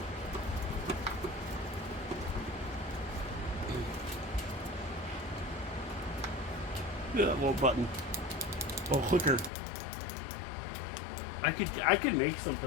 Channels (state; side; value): drops out; right; at 9.5 s